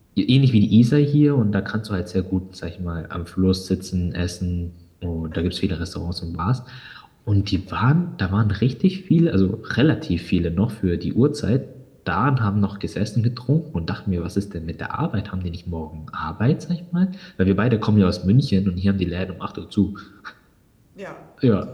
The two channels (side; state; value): both; identical; correlation 1.00